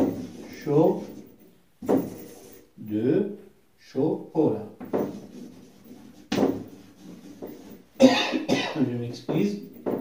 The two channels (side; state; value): both; identical; correlation 1.00